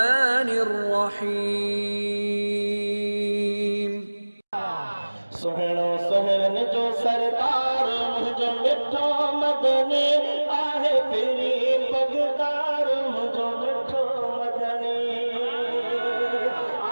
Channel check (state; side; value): inverted; both; correlation -1.00